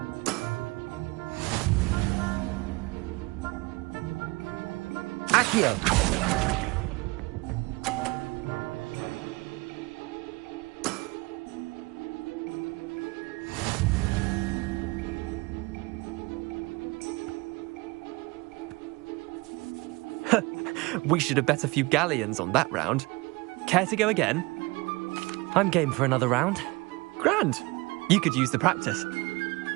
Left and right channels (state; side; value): quieter; left; 24.1 dB